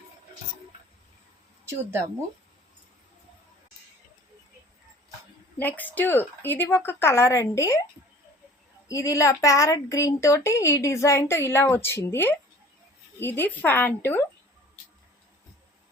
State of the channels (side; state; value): both; normal; correlation 0.47